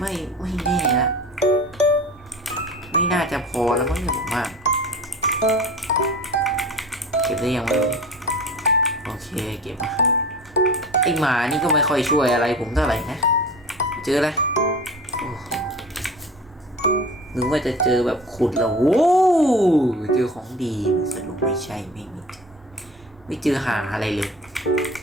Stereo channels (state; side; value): normal; both; correlation 0.38